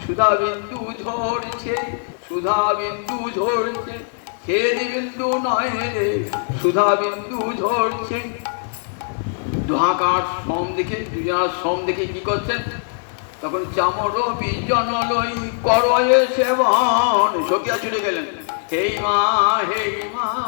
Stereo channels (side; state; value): right; silent; 63 dB below the other